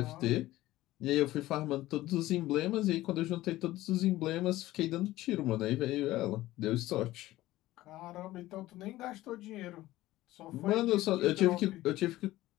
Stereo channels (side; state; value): right; quieter; 16.5 dB